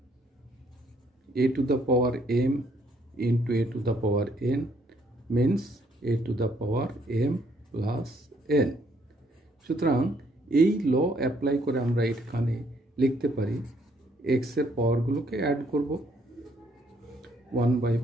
a to the power m into a to the power n means a to the power m plus n। সুতরাং এই ল অ্যাপ্লাই করে আমরা এখানে লিখতে পারি x এর পাওয়ারগুলোকে অ্যাড করব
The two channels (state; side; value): normal; both; correlation 0.68